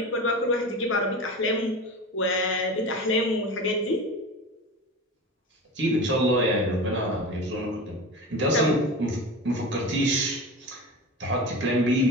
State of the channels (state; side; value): normal; both; correlation 0.30